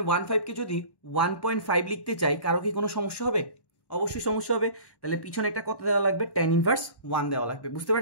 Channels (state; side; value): late; right; 1.1 ms